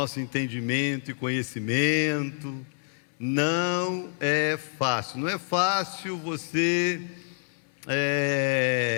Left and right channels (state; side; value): silent; right; 60 dB below the other